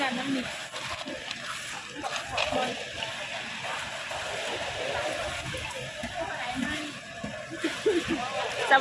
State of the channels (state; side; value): identical; both; correlation 1.00